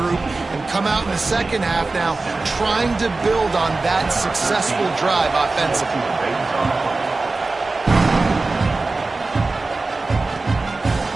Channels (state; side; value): quieter; left; 3.5 dB